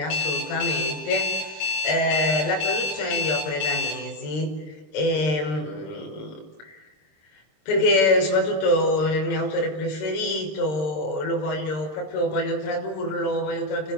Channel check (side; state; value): right; late; 26 ms